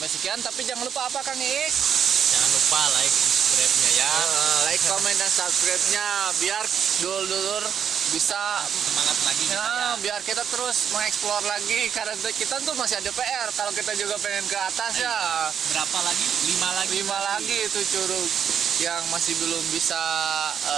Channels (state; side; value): quieter; left; 8.1 dB